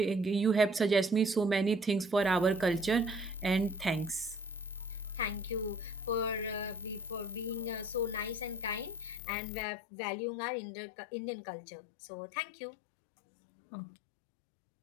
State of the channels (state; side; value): drops out; right; at 9.2 s